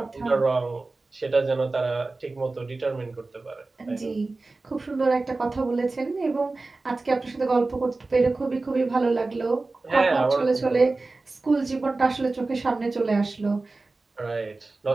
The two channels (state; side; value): quieter; left; 3.4 dB